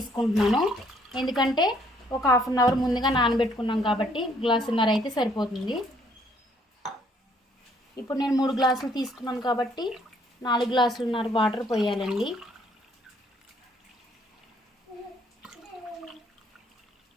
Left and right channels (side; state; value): both; normal; correlation 0.65